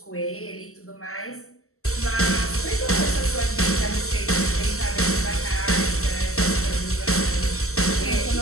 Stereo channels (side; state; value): right; late; 0.63 ms